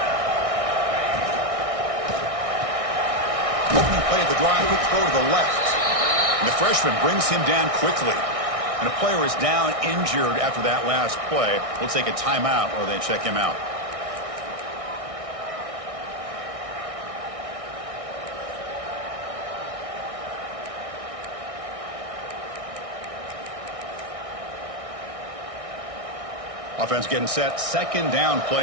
Opening play of the drive, quick throw to the left. And the freshman brings him down quickly. And a player is down injured after that last play. We'll take a timeout or they check him out. Offense getting set. Second down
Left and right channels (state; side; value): late; left; 1.6 ms